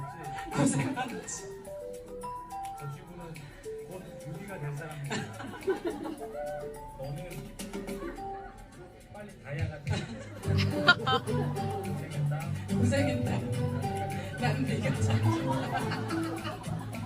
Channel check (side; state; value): both; identical; correlation 1.00